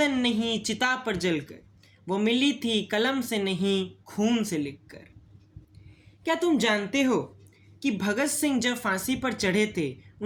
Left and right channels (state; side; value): identical; both; correlation 1.00